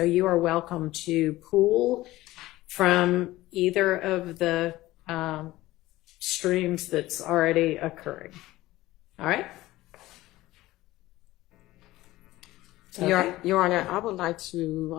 you are welcome to pull from either of the streams that's already occurring. All right? Okay. Your Honor, I would like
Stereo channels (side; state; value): right; quieter; 17.3 dB